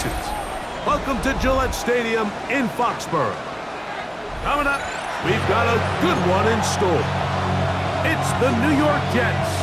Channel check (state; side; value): identical; both; correlation 1.00